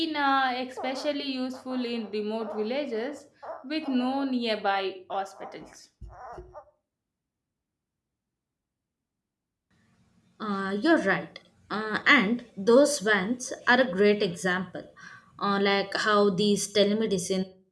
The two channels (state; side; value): identical; both; correlation 1.00